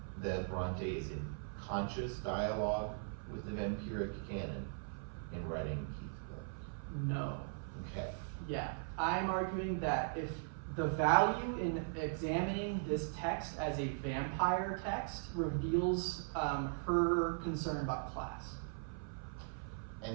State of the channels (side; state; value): left; silent; 52 dB below the other